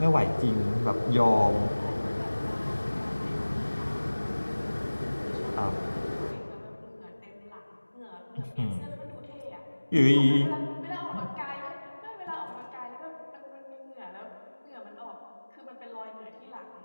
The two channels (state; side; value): inverted; both; correlation -1.00